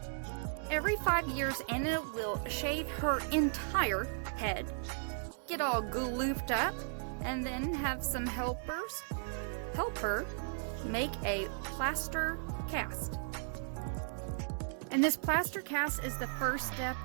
Every 5 years, Anna will shave her entire head, get all glooped up, and then have some helpers help her make a plaster cast. And this plaster cast is the first step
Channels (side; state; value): left; silent; digital silence